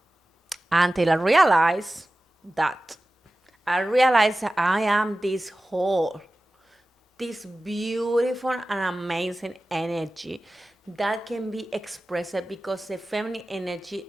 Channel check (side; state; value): both; normal; correlation 0.96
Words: Until I realized that. I realized that I am this whole, this beautiful and amazing energy that can be expressed because the feminine energy